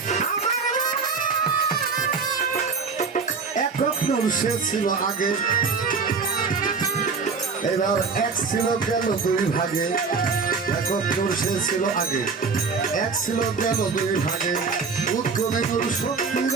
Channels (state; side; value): quieter; left; 5.0 dB